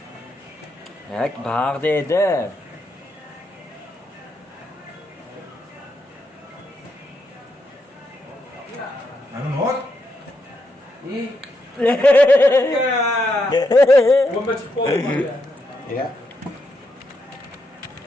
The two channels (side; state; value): both; normal; correlation 0.81